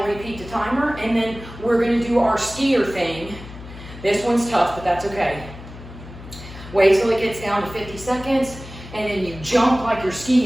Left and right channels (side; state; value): left; noise; hum, 15 dB below the sound